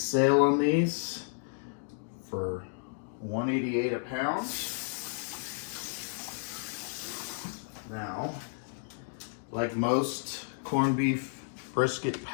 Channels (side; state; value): right; silent; digital silence